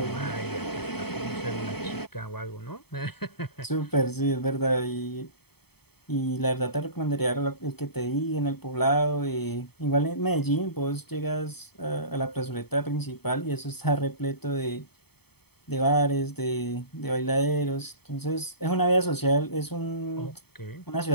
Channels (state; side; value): late; right; 0.97 ms